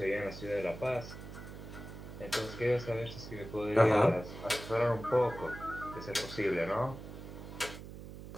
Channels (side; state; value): right; noise; hum, 12 dB below the sound